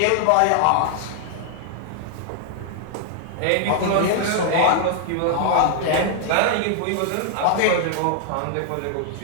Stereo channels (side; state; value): both; different; correlation 0.00